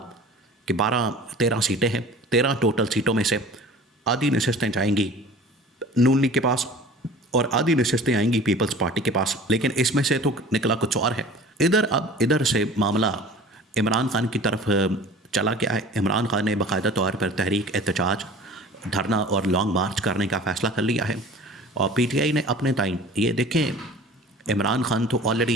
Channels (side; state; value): both; normal; correlation 0.43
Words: कि 12-13 सीटें हैं, 13 टोटल सीटों में से आधी नशस्तें जाएंगी नून लीग के पास और आधी नशस्तें आएंगी पीपल्स पार्टी के पास। लेकिन इसमें से तो निकला कुछ और है। इधर से मामला इमरान खान की तरफ चला गया है। इमरान खान ने बाकायदा तौर पर तहरीक एहतजाज, धरना और लॉन्ग मार्च करने का फ़ैसला कर लिया है। और पीटीआई ने अपने टाइम ये देखें, इमरान खान तो